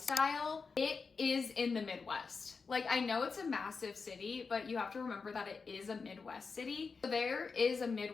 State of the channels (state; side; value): quieter; right; 4.9 dB